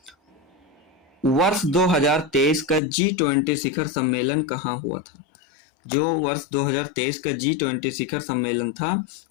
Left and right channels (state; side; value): drops out; right; at 2.8 s